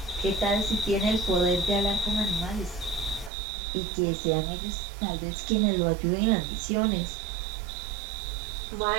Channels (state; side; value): drops out; left; at 3.3 s